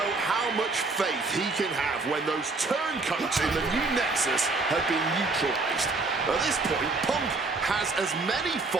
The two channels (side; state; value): left; quieter; 3.6 dB